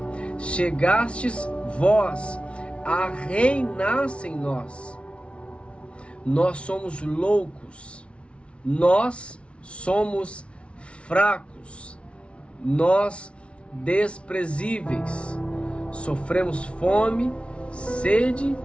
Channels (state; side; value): late; right; 0.060 ms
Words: chegastes vós a reinar sem nós. Nós somos loucos, nós somos fracos, nós desprezíveis, sofremos fome, sede,